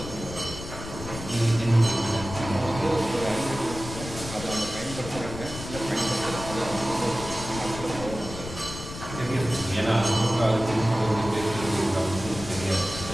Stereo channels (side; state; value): left; noise; rumble, 10 dB below the sound